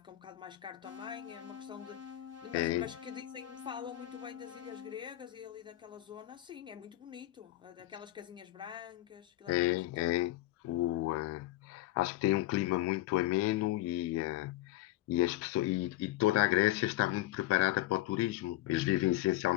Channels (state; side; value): quieter; right; 16.1 dB